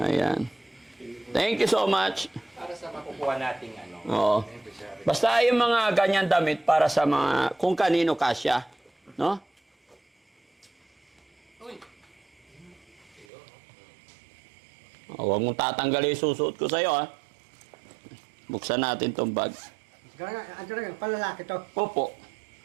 Ayan. Thank you so much. Para sa makukuha nating ano. Oo. Basta yung mga ganyan damit para sa mga kung kanino kasya. No? Huwag mong tatanggalin yung susuot ko sa'yo, ha? Buksan natin tong bag. Ano rin, palalaki to. Opo.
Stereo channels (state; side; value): drops out; left; at 13.2 s